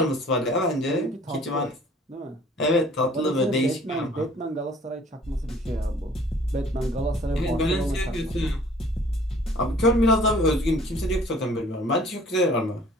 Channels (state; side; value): normal; both; correlation 0.53